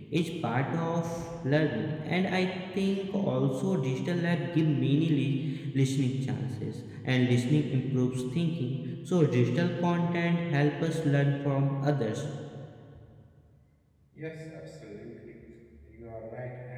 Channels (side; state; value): both; identical; correlation 1.00